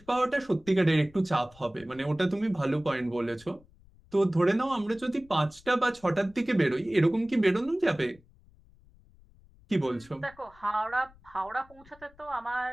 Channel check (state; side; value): noise; left; rumble, 26 dB below the sound